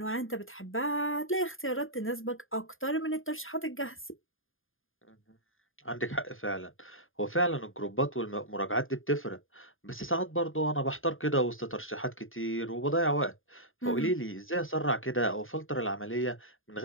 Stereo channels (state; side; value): late; right; 0.59 ms